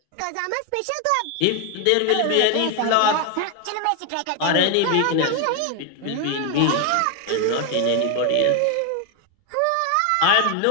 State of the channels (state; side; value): different; both; correlation 0.01